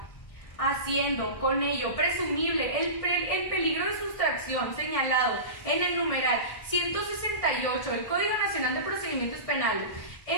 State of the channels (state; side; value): late; right; 1.6 ms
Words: haciendo con ello presumible el peligro de sustracción señalado en el numeral 168 del Código Nacional de Procedimientos Penales,